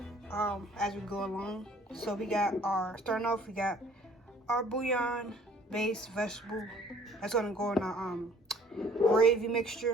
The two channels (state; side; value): normal; both; correlation 0.55